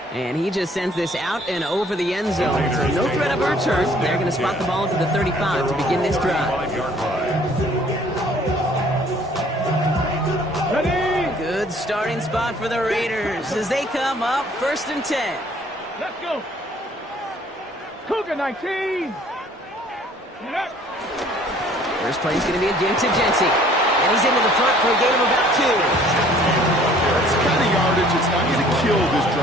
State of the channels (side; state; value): both; normal; correlation 0.57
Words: And he just sends this out and over the end zone. So no threat of a return. They're going to spot the ball into the 35 to begin this drive. Good starting spot for the Raiders as they come up first and 10. Let's go. Cougar 19. First play is going to be a give to Jency. And he's into the front for a gain of about 2. That's the kind of yardage it's not going to kill this